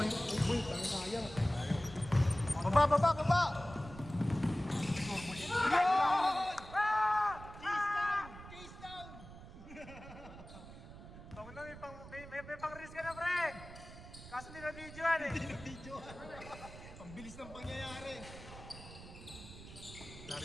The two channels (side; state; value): right; noise; rumble, 15 dB below the sound